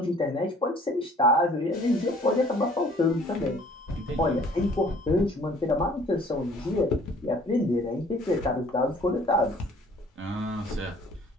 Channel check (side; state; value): both; normal; correlation 0.54